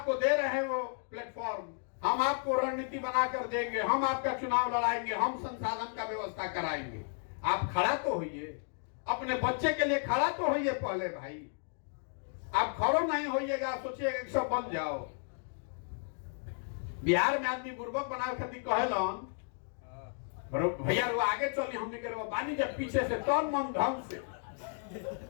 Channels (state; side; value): silent; right; 55 dB below the other